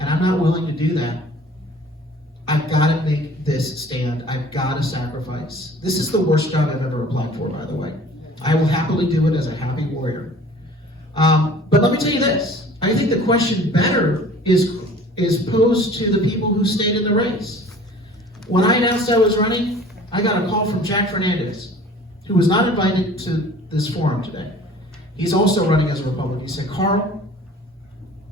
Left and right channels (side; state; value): both; normal; correlation 0.47